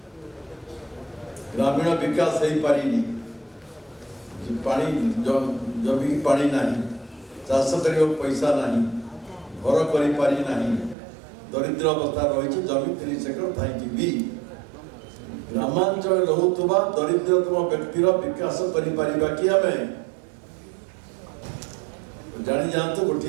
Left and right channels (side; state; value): left; drops out; at 11.0 s